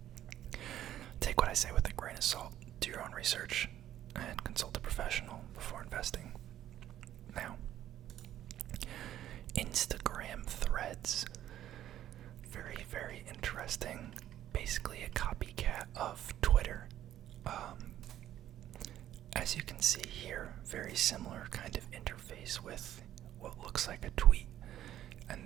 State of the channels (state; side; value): quieter; left; 12.1 dB